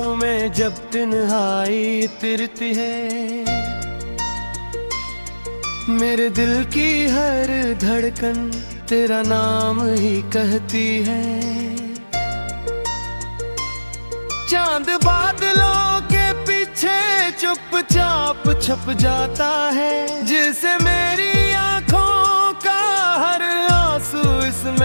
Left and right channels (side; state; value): both; inverted; correlation -1.00